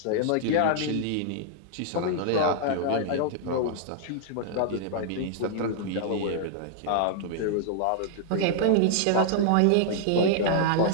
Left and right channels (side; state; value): both; different; correlation -0.01